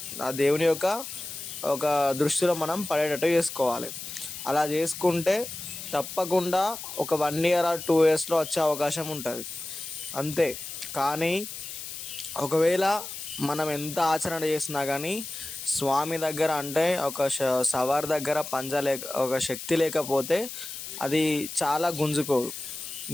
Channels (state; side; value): noise; left; hiss, 9 dB below the sound